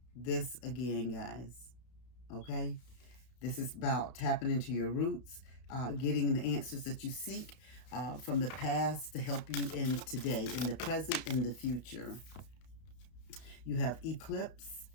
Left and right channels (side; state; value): right; late; 32 ms